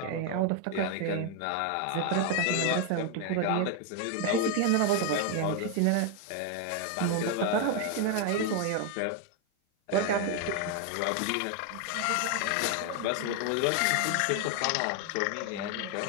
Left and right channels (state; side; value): different; both; correlation 0.00